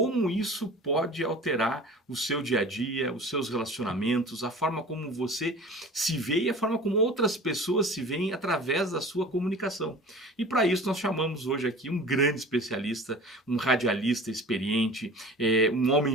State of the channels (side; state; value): both; normal; correlation 0.41